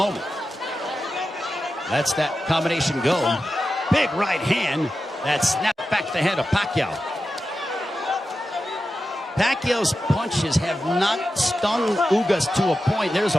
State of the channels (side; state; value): both; normal; correlation 0.91